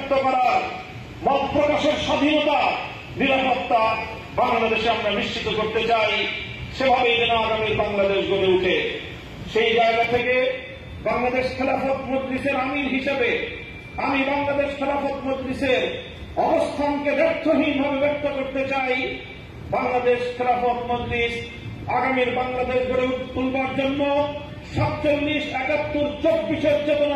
করার, মত প্রকাশের স্বাধীনতা, নিরাপত্তা বাংলাদেশে আমরা নিশ্চিত করতে চাই। সেভাবেই যেন আগামী বাংলাদেশ গড়ে উঠে। সেই জায়গা থেকে বাংলাদেশ খেলাফত মজলিসের আমির হিসেবে আমি বাংলাদেশ খেলাফত মজলিসের অবস্থানকে ব্যর্থহীনভাবে ব্যক্ত করতে চাই। বাংলাদেশ খেলাফত মজলিস আগামীর বাংলাদেশ গড়ে তুলবার জন্য 47, 71, 24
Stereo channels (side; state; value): both; identical; correlation 1.00